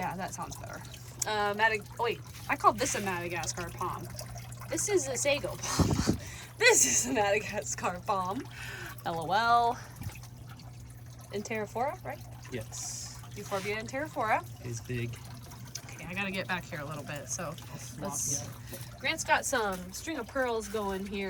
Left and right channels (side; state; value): both; identical; correlation 1.00